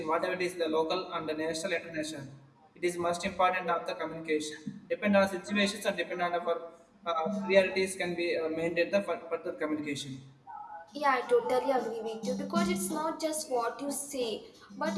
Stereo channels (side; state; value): both; identical; correlation 1.00